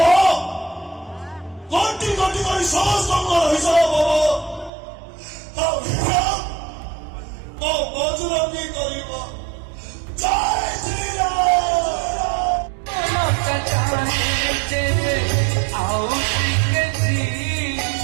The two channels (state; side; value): drops out; left; at 4.7 s